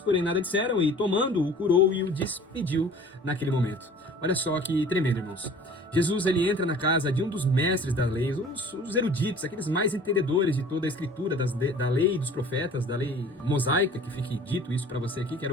porém, nada disseram, e tomando-o, curou e o despediu naquele momento. Olha só que tremendo, irmãos. Jesus, ele entra na casa de um dos mestres da lei, os eruditos, aqueles mais entendedores de toda a escritura da lei e dos profetas, da lei mosaica, que fique dito isso para você aqui, que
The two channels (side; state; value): both; normal; correlation 0.47